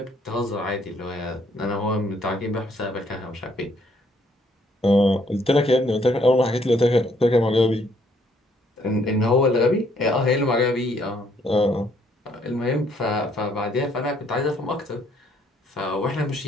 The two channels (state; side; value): normal; both; correlation 0.67